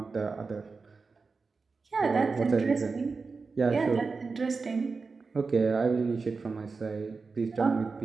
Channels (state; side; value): quieter; left; 4.4 dB